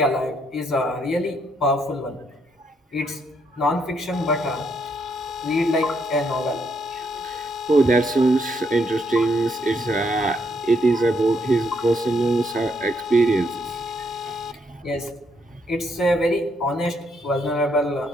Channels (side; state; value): both; normal; correlation 0.74